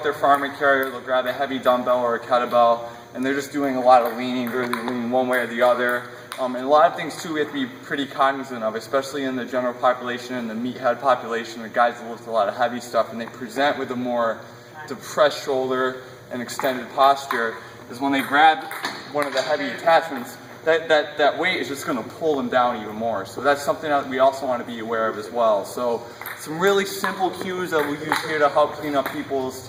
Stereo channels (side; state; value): both; identical; correlation 1.00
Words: their farming carrier, they'll grab a heavy dumbbell or a kettlebell, and they're just doing a lot of leaning, really leaning one way or the other. And a lot of things too we have to be pretty cognizant of, especially in the general population and the meathead population, the guys that lift a lot of heavy stuff and they present with a more depressed shoulder and extended posture, is when they grab one of the heavy attachments, that weight is just going to pull them down even more. So that's something that we also want to be aware of as well. So some really simple cues that we use here to help clean up people's